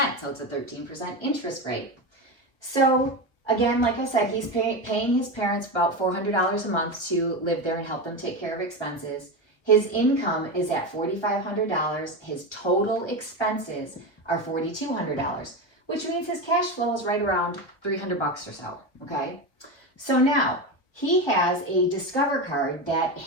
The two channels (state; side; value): late; right; 1.1 ms